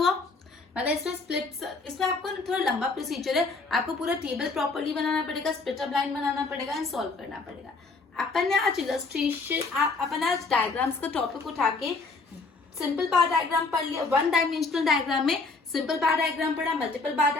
मतलब इसमें स्प्लिट, इसमें आपको थोड़ा लंबा प्रोसीजर है। आपको पूरा टेबल प्रॉपर्ली बनाना पड़ेगा, स्प्लिट अप लाइन बनाना पड़ेगा एंड सॉल्व करना पड़ेगा। अपन ने आज इलस्ट्रेशन, अपन आज डायग्राम्स का टॉपिक उठा के सिंपल बार डायग्राम पढ़ लिया। वन डायमेंशनल डायग्राम में सिंपल बार डायग्राम पढ़ा, multiple bar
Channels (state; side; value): quieter; right; 4.0 dB